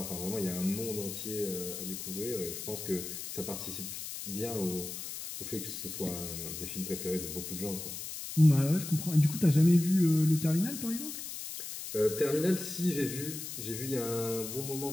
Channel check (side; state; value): left; noise; hiss, 8 dB below the sound